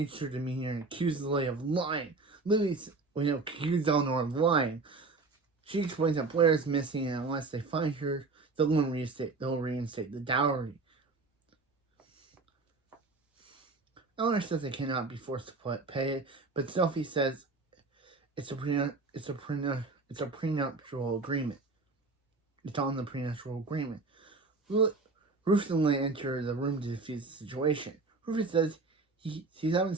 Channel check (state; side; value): quieter; left; 3.8 dB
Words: her demeanor and accuses Lily of lying. Accuses Eleanor of lying. She explains that Blair is missing, and unless they find her, they'll reinstate the dowry. Eleanor says they cannot be forced to pay it, but Sophie says it's a prenuptial agreement. It's on the prenuptial agreement. Rufus and Leigh enter the room to defuse the situation. Rufus says he's having